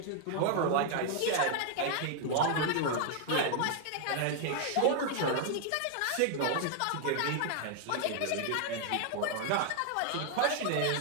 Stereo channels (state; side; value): different; both; correlation 0.00